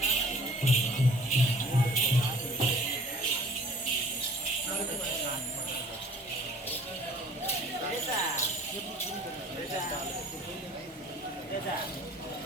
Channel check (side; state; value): both; normal; correlation 0.50